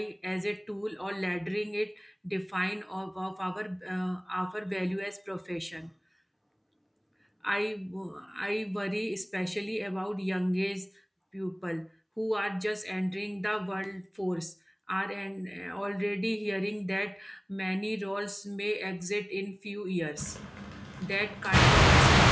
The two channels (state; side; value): identical; both; correlation 1.00